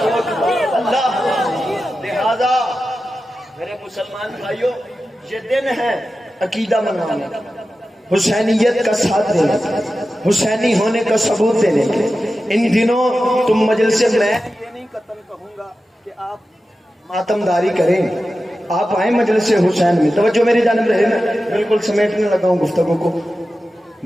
اللہ لہذا میرے مسلمان بھائیوں یہ دن ہے عقیدہ منانے, حسینیت کا ساتھ دینے, حسینی ہونے کا ثبوت دینے. ان دنوں تم مجلس میں یہ نہیں قطن کہوں گا کہ آپ ماتم داری کریں, آپ آئیں مجلس حسین میں. توجہ میری جانب رہے, میں بالکل سمیٹنے لگا ہوں گفتگو کو.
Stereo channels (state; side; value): normal; both; correlation 0.93